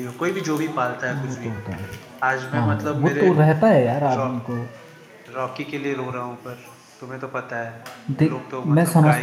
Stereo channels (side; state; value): both; identical; correlation 1.00